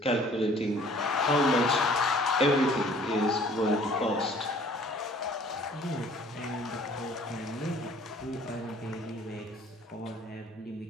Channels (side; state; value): both; normal; correlation 0.54